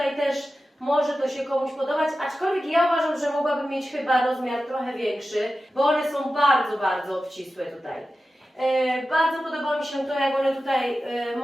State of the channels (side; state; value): both; normal; correlation 0.93